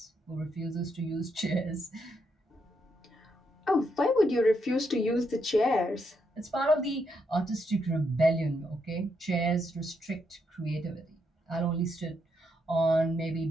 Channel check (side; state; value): both; normal; correlation 0.79